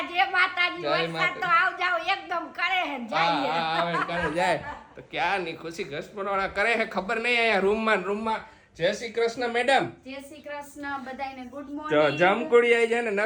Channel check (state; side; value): identical; both; correlation 1.00